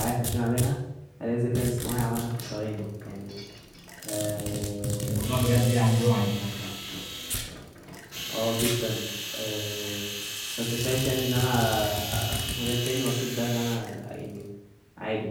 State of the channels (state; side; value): identical; both; correlation 1.00